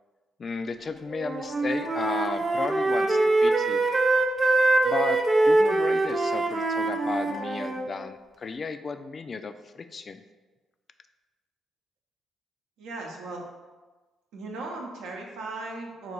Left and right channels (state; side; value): normal; both; correlation 0.87